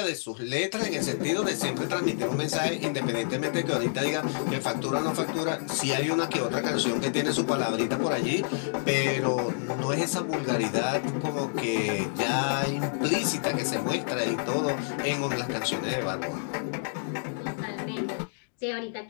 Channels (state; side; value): silent; right; digital silence